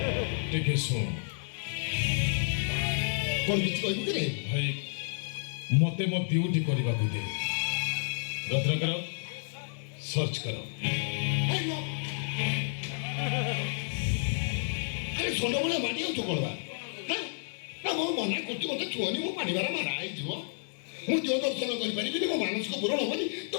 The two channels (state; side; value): silent; right; digital silence